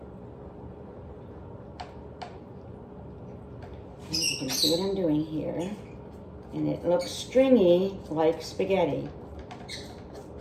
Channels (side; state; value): both; identical; correlation 1.00